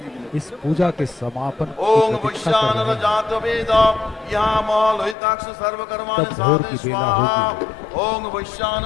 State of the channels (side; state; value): right; drops out; at 5.2 s